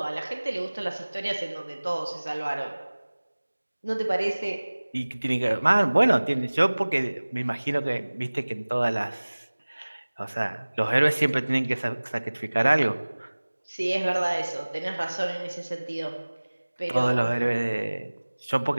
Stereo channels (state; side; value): inverted; both; correlation -1.00